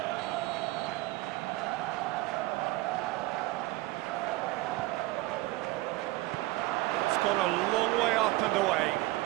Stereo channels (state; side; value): quieter; left; 19.5 dB